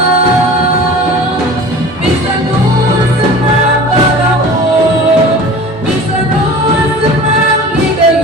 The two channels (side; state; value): both; normal; correlation 0.39